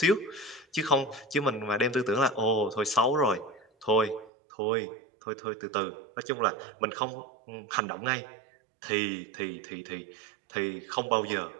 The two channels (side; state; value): left; drops out; at 4.3 s